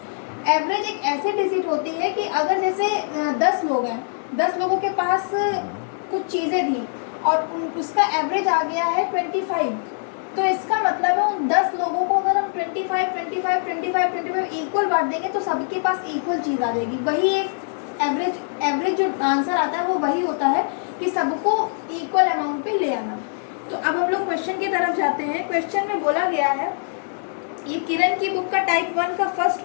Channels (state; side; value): silent; right; digital silence